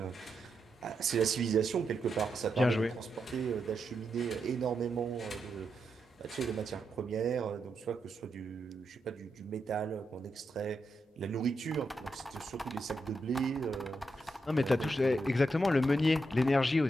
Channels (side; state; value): both; normal; correlation 0.84